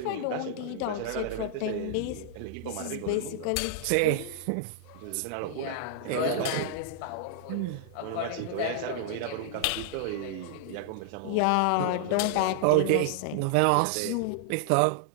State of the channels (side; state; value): both; different; correlation -0.01